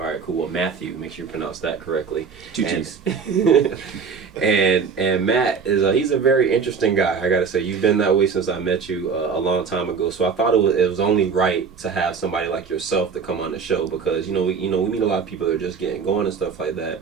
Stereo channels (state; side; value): quieter; left; 5.8 dB